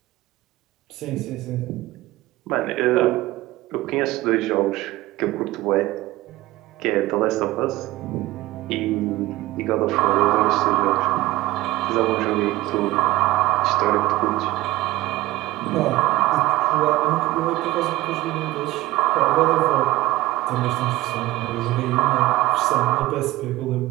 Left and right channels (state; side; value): quieter; left; 17.6 dB